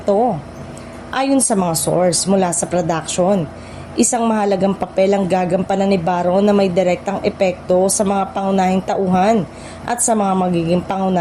Ayon sa mga source mula sa production, isang mahalagang papel ang gagampanan ni Baron na may direktang epekto sa mga pangunahing tauhan at sa mga magiging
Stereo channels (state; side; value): identical; both; correlation 1.00